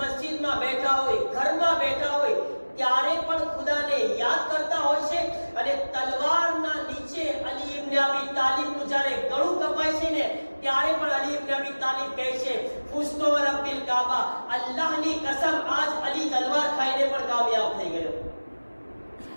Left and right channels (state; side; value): inverted; both; correlation -1.00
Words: બેઠા હોય, ઘરમાં બેઠા હોય, ત્યારે પણ ખુદાને યાદ કરતા હોય છે. અને તલવારના નીચે અલી ઇબ્ન અબી તાલિબનું જ્યારે ગળું કપાય છે ને, ત્યારે પણ અલી ઇબ્ન અબી તાલિબ કહે છે, ફુસ્તો રબ્બિલ કાબા, અલ્લાહની કસમ આજ અલી તલવાર ખાઈને પણ કામયાબ થઈ ગયો.